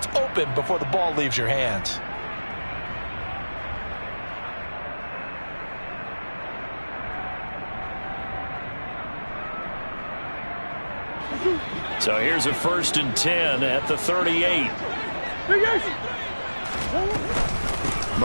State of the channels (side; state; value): both; inverted; correlation -1.00